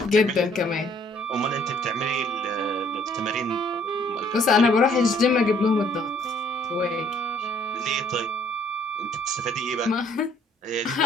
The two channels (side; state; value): both; normal; correlation 0.62